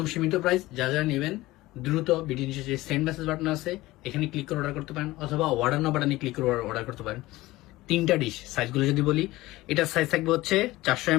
সীমিত প্রাইস। যা যা নেবেন দ্রুত ভিডিও নিচে যে সেন্ড মেসেজ বাটন আছে এখানে ক্লিক করে অর্ডার করতে পারেন, অথবা অর্ডার নাও বাটনে ক্লিক করে অর্ডার করতে পারেন। 3টা ডিশ সাইজগুলো যদি বলি, এটার সাইজ থাকবে হচ্ছে 400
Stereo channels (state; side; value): quieter; right; 18.4 dB